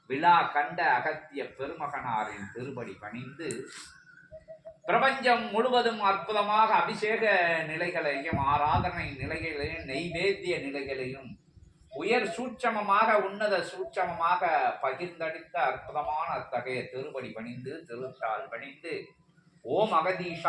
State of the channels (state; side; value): identical; both; correlation 1.00